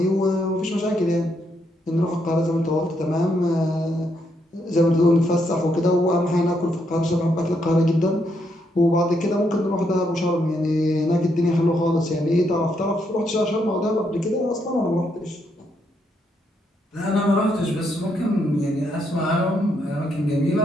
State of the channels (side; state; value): both; normal; correlation 0.77